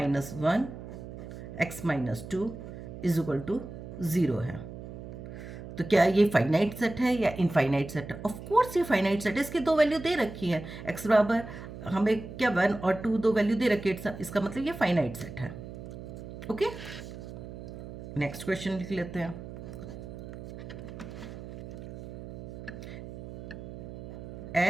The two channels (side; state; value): right; noise; hum, 11 dB below the sound